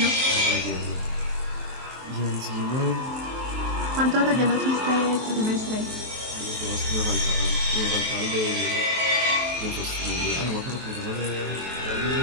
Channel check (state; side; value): late; left; 23 ms